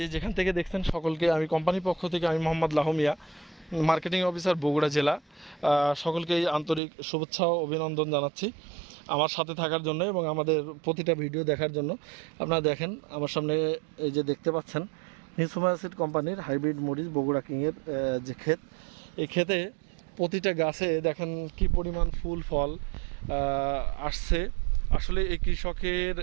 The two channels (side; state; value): left; drops out; at 6.8 s